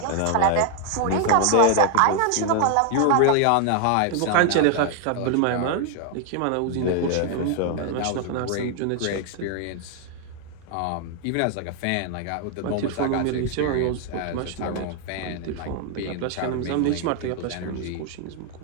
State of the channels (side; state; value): both; different; correlation 0.00